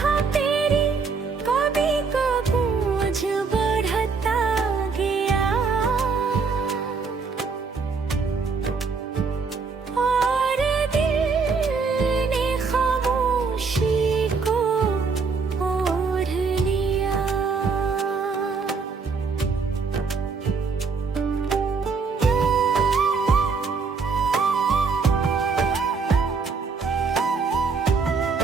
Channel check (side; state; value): left; quieter; 4.9 dB